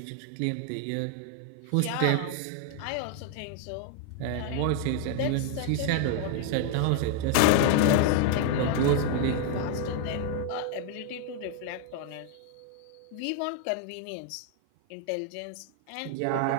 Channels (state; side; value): different; both; correlation 0.00